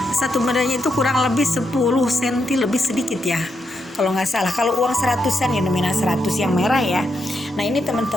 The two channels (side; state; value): both; normal; correlation 0.82